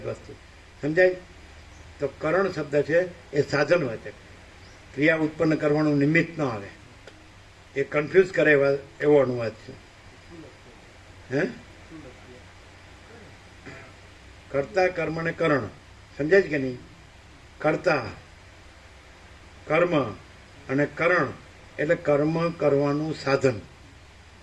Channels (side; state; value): both; identical; correlation 1.00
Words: વસ્તુ. સમજાય? તો કરણ શબ્દ છે એ સાધન હોય છે. ક્રિયા ઉત્પન્ન કરવાનું નિમિત્ત ન આવે. એ કન્ફ્યુઝ કરે એવો અનુવાદ છે. હે? કર્તા, કર્મ ને કરણ. સમજાય છે કે નહીં? કર્તા, કર્મ અને કરણ એટલે કર્મ કરવાનું સાધન.